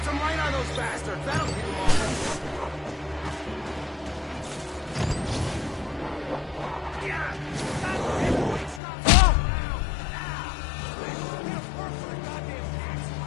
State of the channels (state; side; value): drops out; right; at 8.8 s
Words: some light on those bastards. That'll keep them off us. Yeah! Stop it! Wait, stop! Now! We have work for the goddamn tax